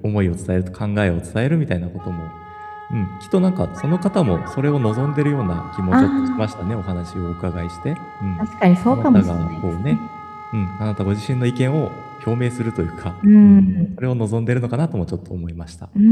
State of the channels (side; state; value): both; identical; correlation 1.00